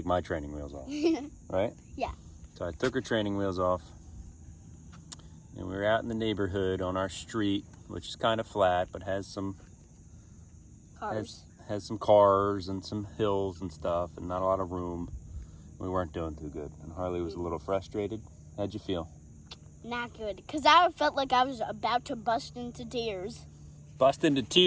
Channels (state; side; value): identical; both; correlation 1.00